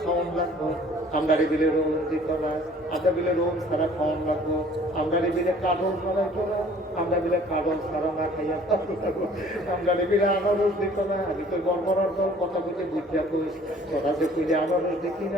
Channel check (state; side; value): normal; both; correlation 0.53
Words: লাগবো আমরা বিলে রোম দিত না আমরা বিলে রোম ছাড়া খাওয়ান লাগবো আমরা বিলে কাঠল ছাড়াইতো না আমরা বিলে কাঠল ছাড়া না খাইয়া থাকবো আমরা বিলে আনারস দিত না আমি তো গড়বড়ার দল কথা বলতে বুঝিয়া কইস তোরা যে কইলে আনারস দেখি